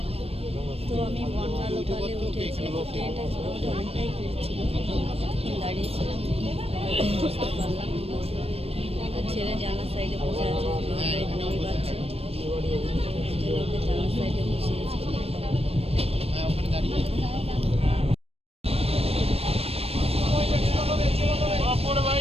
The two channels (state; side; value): late; left; 0.28 ms